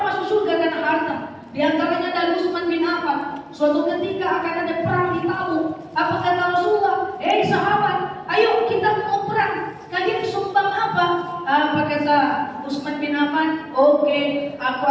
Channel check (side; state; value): both; identical; correlation 1.00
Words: masuk surga karena harta. Di antaranya dari Utsman bin Affan. Suatu ketika akan ada perang di Tabuk. Apa kata Rasulullah? Sahabat, ayo kita mau perang. Kalian sumbang apa? Apa kata Utsman bin Affan? Oke, aku